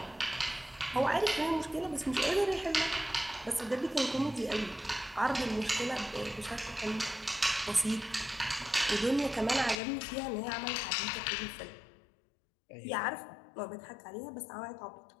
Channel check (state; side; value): drops out; right; at 9.8 s